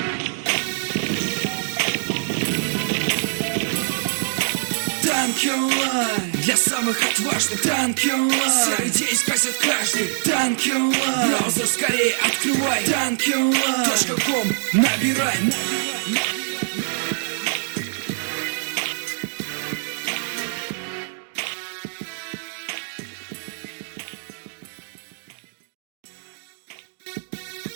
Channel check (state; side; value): silent; left; digital silence